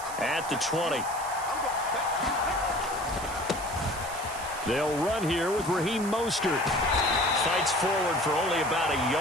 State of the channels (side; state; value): right; noise; hiss, 12 dB below the sound